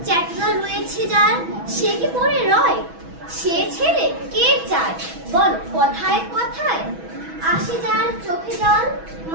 চ্যাটলা রয়েছে যার সে কি পড়ে রয়। সে ছেলে কে চায় বল কথায় কথায়, আসে যার চোখে জল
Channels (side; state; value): left; late; 6.1 ms